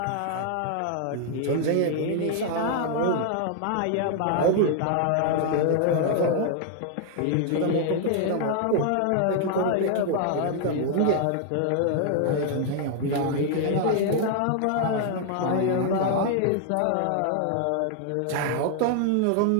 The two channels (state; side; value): different; both; correlation 0.00